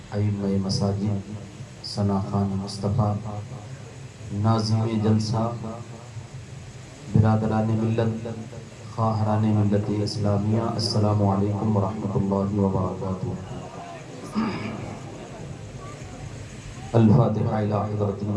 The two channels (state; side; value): identical; both; correlation 1.00